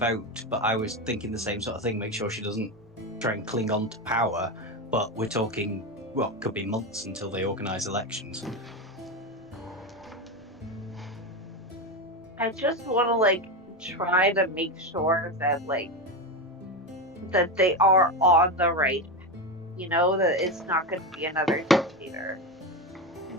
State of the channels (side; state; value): both; normal; correlation 0.16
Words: but I was thinking the same sort of thing. Make sure she doesn't try and cling on to power. But we're talking, well, could be months until they organise elections. I just want to like try to make sure that that they are on the right, that it's not going to be another dictator.